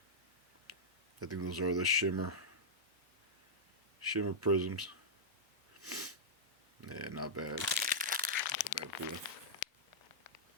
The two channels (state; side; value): normal; both; correlation -0.11